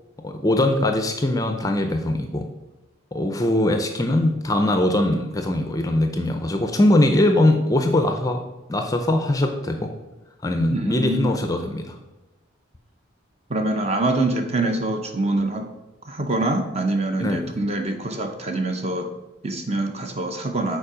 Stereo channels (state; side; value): normal; both; correlation 0.70